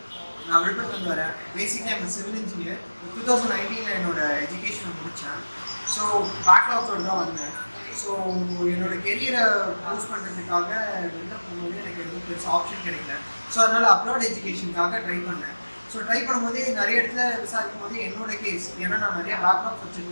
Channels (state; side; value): inverted; both; correlation -1.00